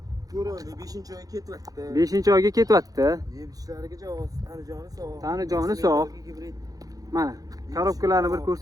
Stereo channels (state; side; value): late; left; 0.18 ms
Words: 5-oyga ketyapti. 5-oyga ketyapti. Yeb-ichishlariga javob, tanijoni sog'. Tanijoni sog'. Mana, korobkalarni bir